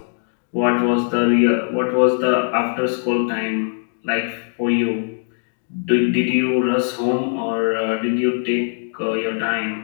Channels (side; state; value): right; silent; digital silence